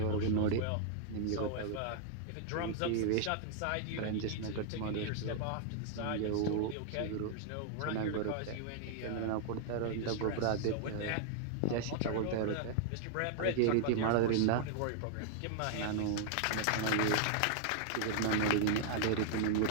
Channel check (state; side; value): different; both; correlation -0.01